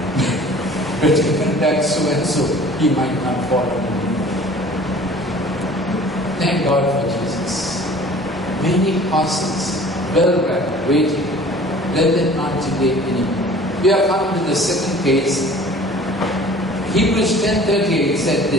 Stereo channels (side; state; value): both; normal; correlation 0.47